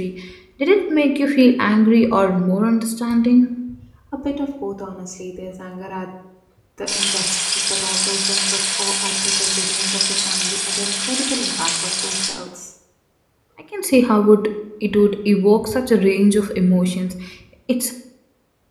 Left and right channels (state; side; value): identical; both; correlation 1.00